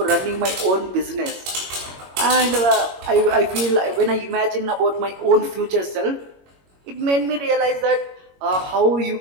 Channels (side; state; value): left; late; 21 ms